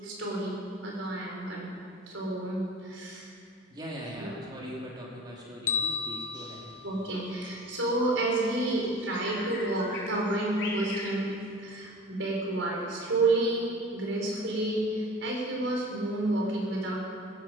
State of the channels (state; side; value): normal; both; correlation 0.40